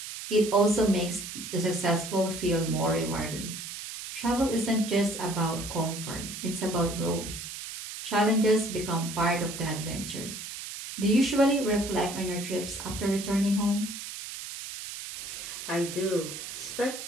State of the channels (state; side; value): noise; right; hiss, 9 dB below the sound